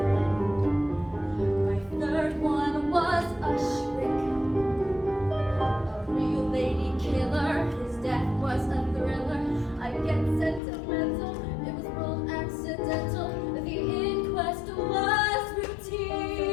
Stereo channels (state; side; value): drops out; right; at 10.6 s